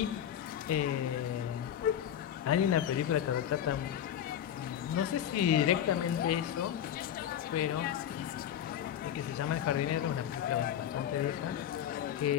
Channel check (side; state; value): right; quieter; 10.1 dB